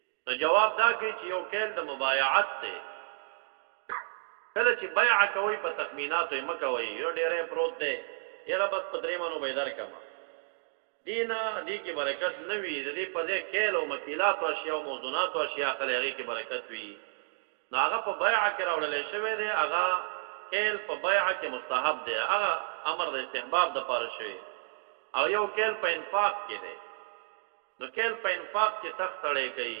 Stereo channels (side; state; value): left; silent; digital silence